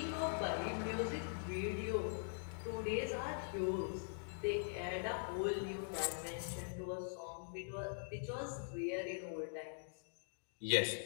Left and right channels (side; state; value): right; silent; digital silence